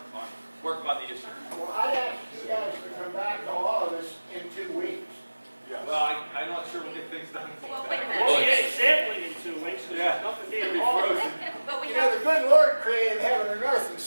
on the issue. Well, I'd ask you guys to come back to all of us in 2 weeks. Well, I'm not sure we'll get things done. Well, wait a We'll minute. get sampling in 2 weeks, because there's nothing It'll being be hauled. frozen. But we You know, have, the good Lord created heaven and earth in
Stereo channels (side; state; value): both; inverted; correlation -1.00